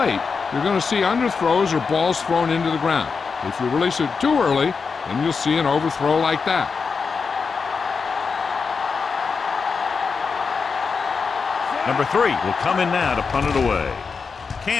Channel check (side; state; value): right; quieter; 5.2 dB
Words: you're going to see underthrows or balls thrown into the ground. If you release it too early, then you'll see an overthrow like that. Number 3 will come in now to punt it away.